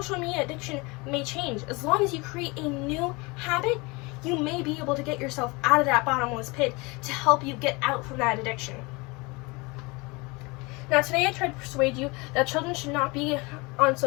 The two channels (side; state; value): right; quieter; 26.0 dB